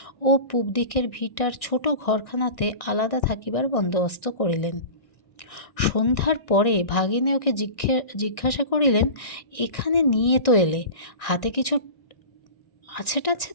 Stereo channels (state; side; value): late; right; 1.6 ms